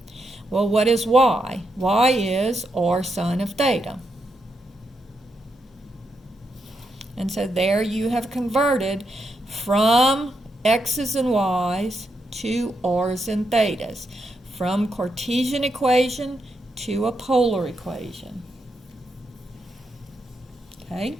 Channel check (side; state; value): both; normal; correlation 0.83